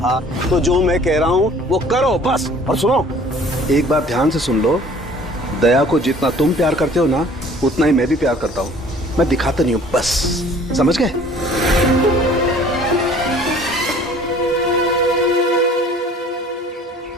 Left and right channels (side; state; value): both; normal; correlation 0.52